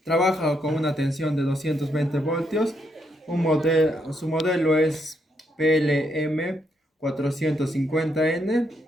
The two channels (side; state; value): both; normal; correlation 0.77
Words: Trabaja con una tensión de 220 voltios. Su modelo es PLM 450N